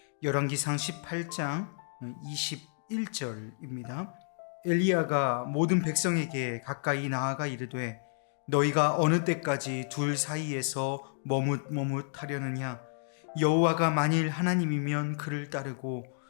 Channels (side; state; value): right; silent; digital silence